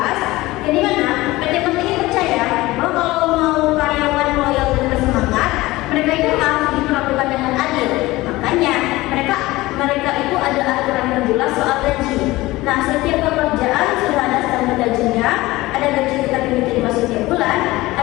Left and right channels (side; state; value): right; quieter; 19.2 dB